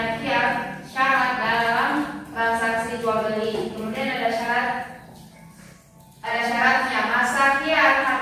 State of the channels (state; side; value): identical; both; correlation 1.00